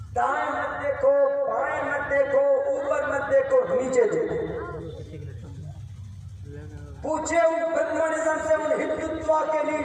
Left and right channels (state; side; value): identical; both; correlation 1.00